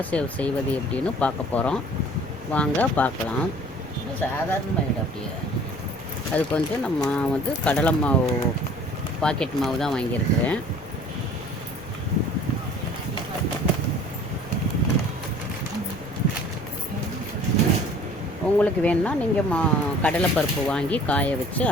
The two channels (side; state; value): left; noise; rumble, 20 dB below the sound